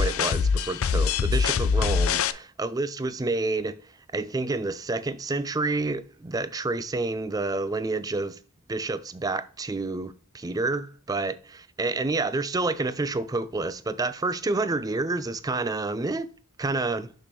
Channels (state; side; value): normal; both; correlation 0.51